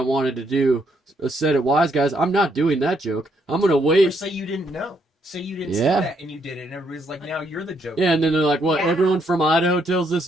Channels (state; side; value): normal; both; correlation 0.74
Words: wanted to do a set at Wise Guys, I'm not doing that joke. I'm going to wait. Or say you didn't know. Say you didn't see that and you did it, and everybody's like, now you're the joke. Yeah, and then they're like, what, everyone from Idaho tells this